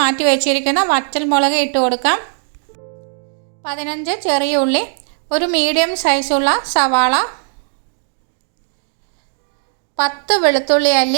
വെച്ചിരിക്കുന്ന വറ്റൽമുളക് ഇട്ട് കൊടുക്കാം. 15 ചെറിയ ഉള്ളി, ഒരു മീഡിയം സൈസുള്ള സവാള, 10 വെളുത്തുള്ളി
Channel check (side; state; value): left; silent; 68 dB below the other